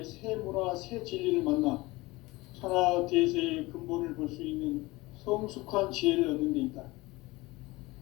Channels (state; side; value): quieter; right; 21.3 dB